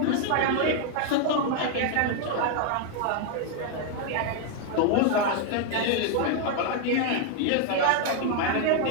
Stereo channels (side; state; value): both; different; correlation 0.00